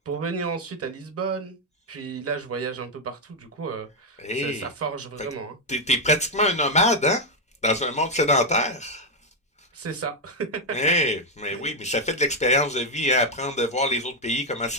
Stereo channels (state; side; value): normal; both; correlation 0.01